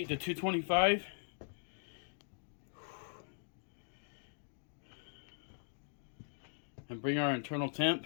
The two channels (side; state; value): right; silent; digital silence